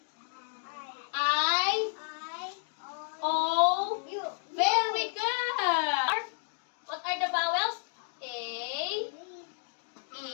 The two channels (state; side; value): silent; right; 57 dB below the other